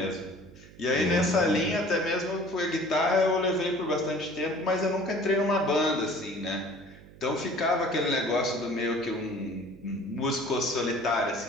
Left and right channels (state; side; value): noise; right; hum, 21 dB below the sound